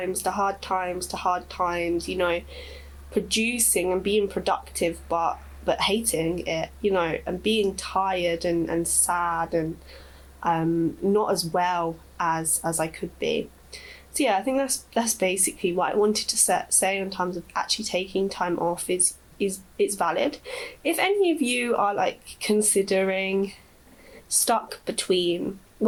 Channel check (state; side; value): identical; both; correlation 1.00